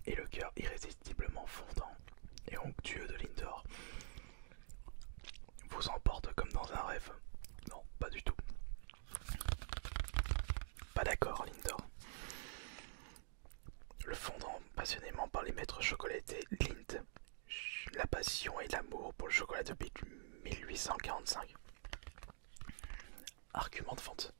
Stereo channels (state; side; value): silent; left; digital silence